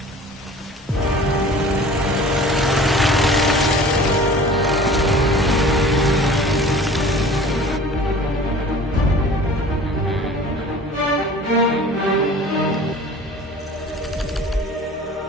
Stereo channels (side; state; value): both; normal; correlation 0.44